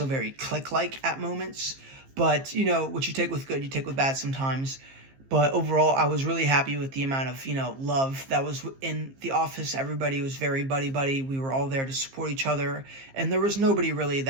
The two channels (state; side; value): late; left; 15 ms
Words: very clique-like at moments. But what you take with good, you take with bad sometimes. But overall, I was really happy with the amount of, love that was in the office. Everybody was very buddy-buddy. We were all there to support each other. And there was nobody really